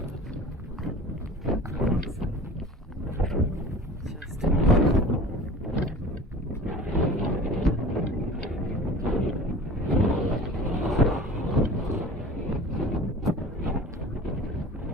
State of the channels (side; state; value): both; normal; correlation 0.40